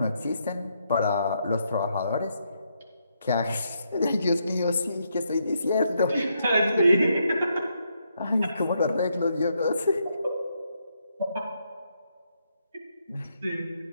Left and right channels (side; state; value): both; inverted; correlation -0.78